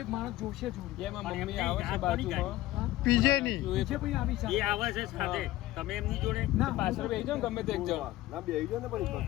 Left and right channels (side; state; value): right; quieter; 16.4 dB